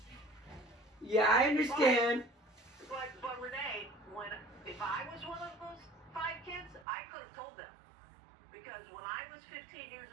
Yeah, I understand. But Renee, if I was one of those 5 kids, I could have told them. Because when I was 15 years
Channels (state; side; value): drops out; left; at 6.9 s